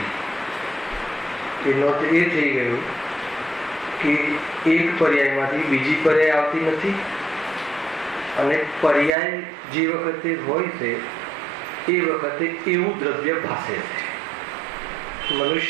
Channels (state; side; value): drops out; left; at 9.1 s